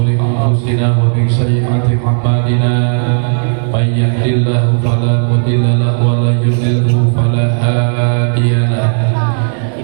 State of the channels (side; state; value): left; silent; digital silence